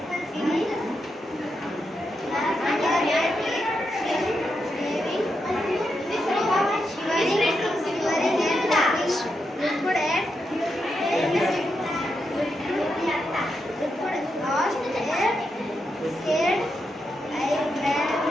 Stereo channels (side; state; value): both; normal; correlation 0.84